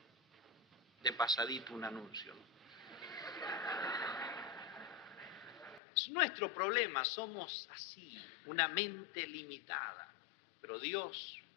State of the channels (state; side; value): drops out; right; at 5.8 s